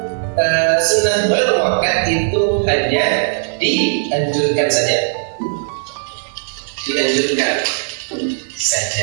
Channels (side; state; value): left; silent; 56 dB below the other